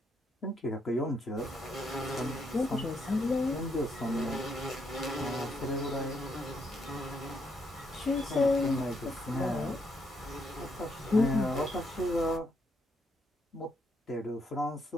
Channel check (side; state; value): both; normal; correlation 0.76